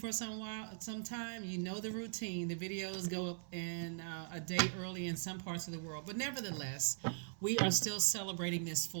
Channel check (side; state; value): left; silent; 51 dB below the other